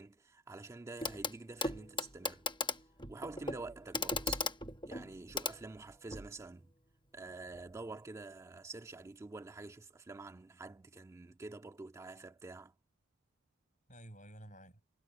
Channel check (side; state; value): both; normal; correlation 0.32